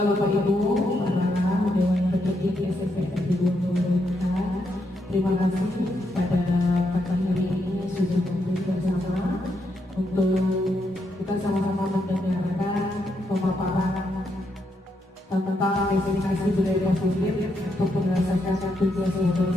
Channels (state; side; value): normal; both; correlation 0.80